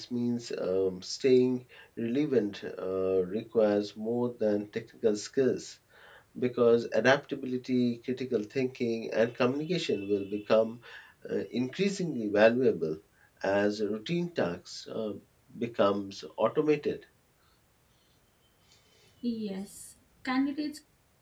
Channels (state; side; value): identical; both; correlation 1.00